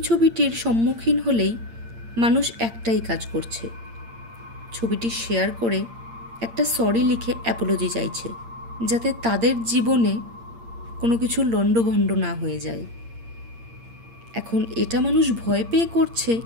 সম্মুখীন হলেই মানুষ একটাই কাজ করছে, ছবিটি শেয়ার করে একটা সরি লিখে অ্যাপোলজি চাইছে, যাতে তাদের জীবনে কোনো কিছু লণ্ডভণ্ড না হয়ে যায়। এখন এটা মানুষ ভয় পেয়ে করছে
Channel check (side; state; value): left; late; 8.7 ms